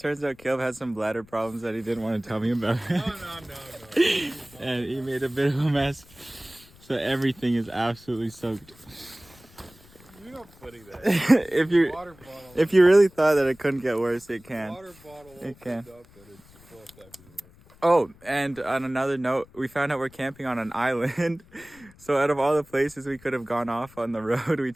some bladder problems that he didn't want to tell me about. No. And he made a bit of a mess. So everything is absolutely soaked. You're not putting that. If you really thought that it couldn't get worse, it can. Water bottle It can. opened up and it's full everywhere. Oh, and on another note, we found out we're camping on an island. So out of all the places we could have gone off on the road, we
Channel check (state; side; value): noise; left; rumble, 25 dB below the sound